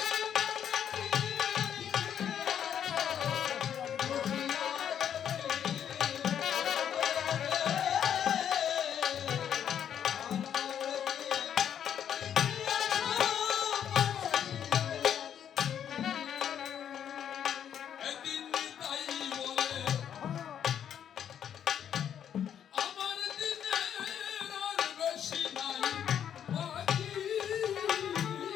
একদিন তাই বলে আমার দিনের আর বেশি নাই বাকি।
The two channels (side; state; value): right; quieter; 9.2 dB